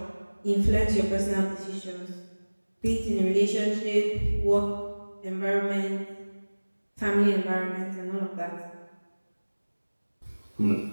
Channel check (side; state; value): both; inverted; correlation -1.00